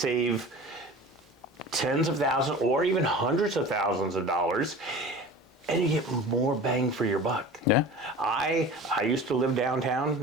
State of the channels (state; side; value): normal; both; correlation 0.38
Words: tens of thousands or even hundreds of thousands of dollars, and you get more bang for your buck. Yeah. I used to live